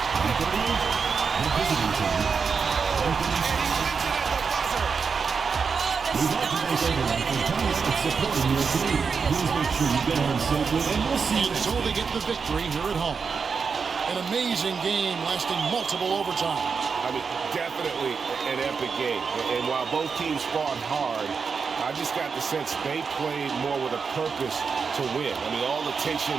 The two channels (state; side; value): quieter; left; 5.5 dB